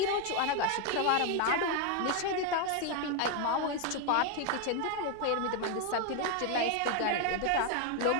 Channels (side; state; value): both; different; correlation 0.01